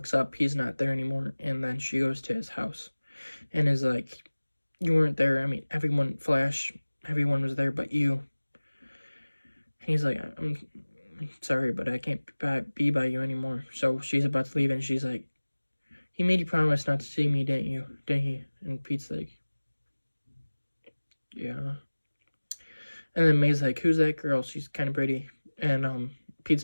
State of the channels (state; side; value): inverted; both; correlation -1.00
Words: up, he's not there anymore, and then she goes to his house and is like, you weren't there. I mean, everyone was there but you. And he's like, I'm sorry, but I can't be by you anymore. So she's about to leave, and she's like, he made you promise not to see me, didn't he? And Pete's like, yeah. And then May's like, who's that girl? She's kind of pretty. And Pete's